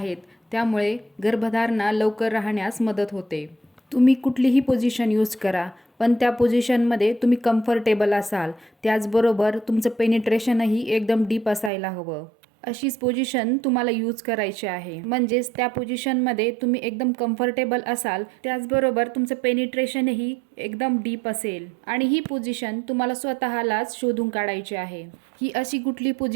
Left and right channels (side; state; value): left; drops out; at 11.7 s